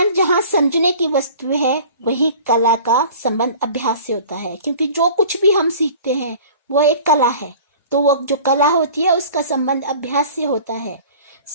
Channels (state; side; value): inverted; both; correlation -0.44